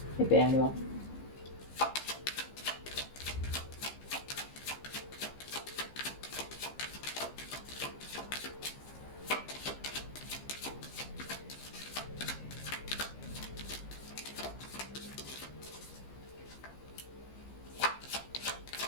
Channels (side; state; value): right; late; 15 ms